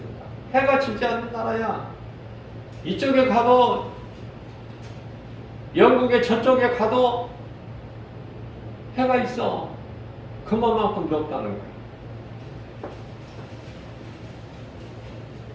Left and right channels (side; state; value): both; identical; correlation 1.00